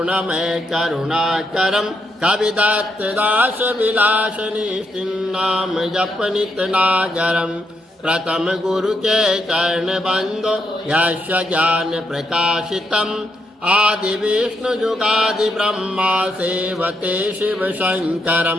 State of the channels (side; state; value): both; normal; correlation 0.78